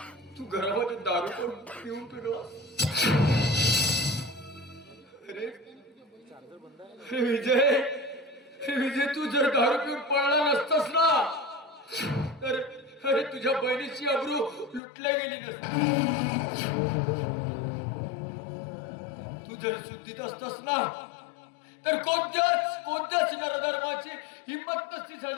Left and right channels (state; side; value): drops out; right; at 14.8 s